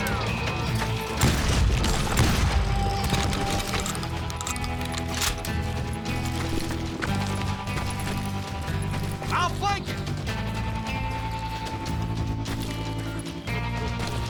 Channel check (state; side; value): identical; both; correlation 1.00